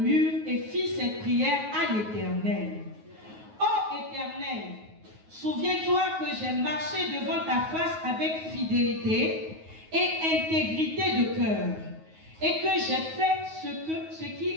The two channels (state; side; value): late; left; 9.4 ms